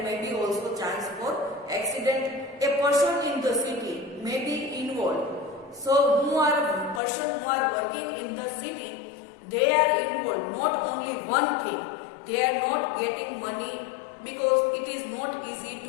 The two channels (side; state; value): right; drops out; at 7.0 s